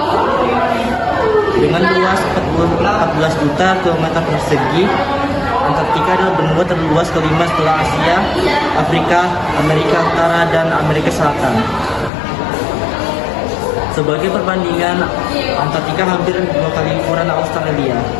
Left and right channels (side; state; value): right; drops out; at 12.1 s